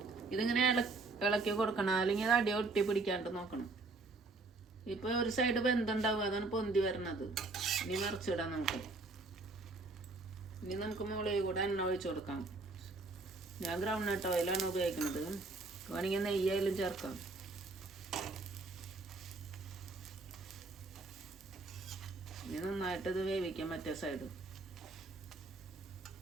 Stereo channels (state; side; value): quieter; left; 3.5 dB